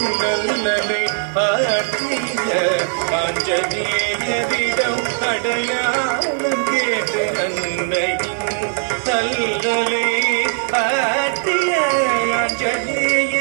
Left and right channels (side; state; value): left; silent; 58 dB below the other